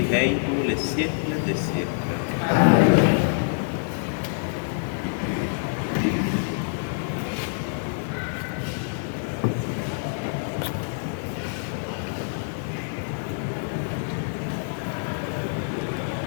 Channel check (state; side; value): silent; right; digital silence